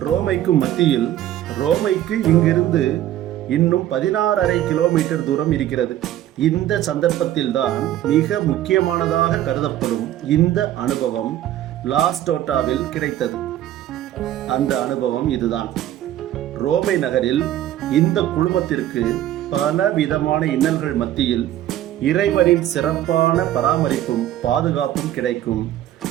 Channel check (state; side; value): quieter; left; 12.7 dB